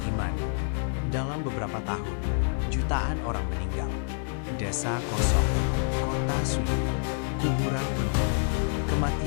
iman. Dalam beberapa tahun, jutaan orang meninggal. Desa kosong, kota sunyi, kuburan penuh.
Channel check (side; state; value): right; silent; 57 dB below the other